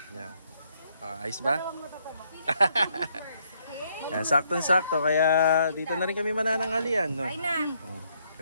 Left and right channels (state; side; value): inverted; both; correlation -0.72